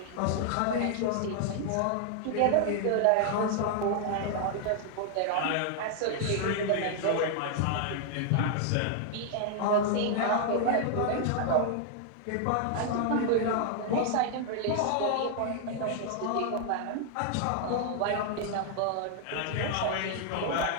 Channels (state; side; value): different; both; correlation 0.00